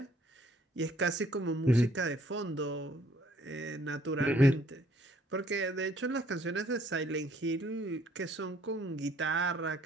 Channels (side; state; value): both; normal; correlation 0.63